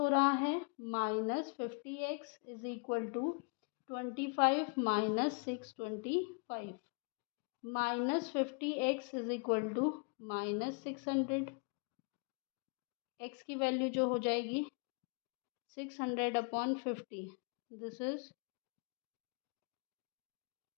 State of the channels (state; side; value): quieter; right; 35.5 dB